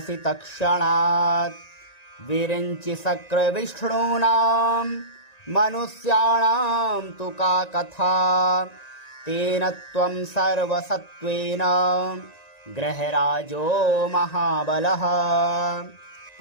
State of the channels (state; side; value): late; right; 1.9 ms